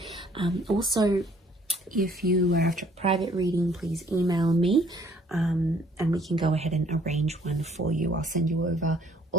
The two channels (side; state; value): both; normal; correlation 0.61